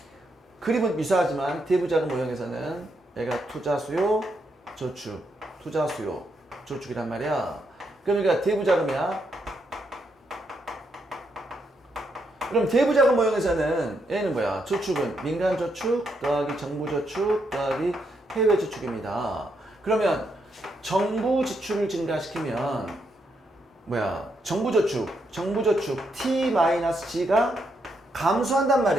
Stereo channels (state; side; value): normal; both; correlation 0.79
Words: 그림은 유사하지만 대부자금 모형에서는 얘가 투자 수요, 저축, 투자 수요, 저축이란 말이야. 그러니까 대부자금이야. 그럼 대부자금 모형에서는 얘는 뭐야? 저축은 민간 저축 더하기 정부 저축 더하기 해외 저축입니다. 그러면 정부 지출을 증가시키면 뭐야? 정부 저축 T-G가 감소한단